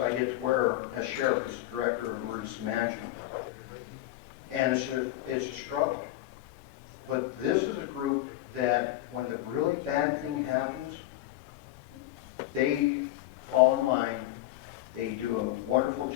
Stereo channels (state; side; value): quieter; right; 15.2 dB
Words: get to wear as sheriff, as the director of emergency management. And it's a struggle. But this is a group that when the really bad thing happens, they fall in line. They do a wonderful